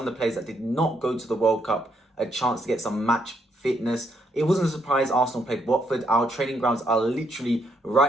the players that did not go to the World Cup a chance to get some match fitness. It wasn't a surprise Arsenal played Watford. Our training grounds are literally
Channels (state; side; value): normal; both; correlation 0.74